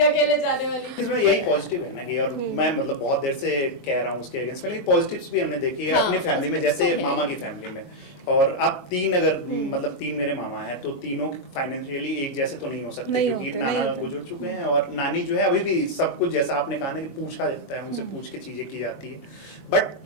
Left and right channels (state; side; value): late; right; 22 ms